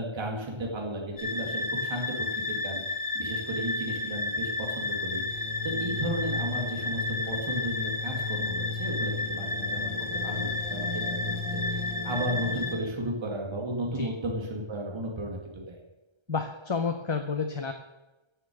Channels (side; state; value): left; late; 1.3 ms